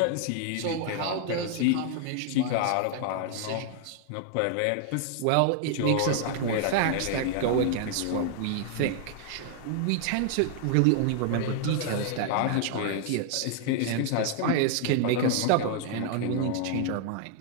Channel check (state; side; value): different; both; correlation 0.00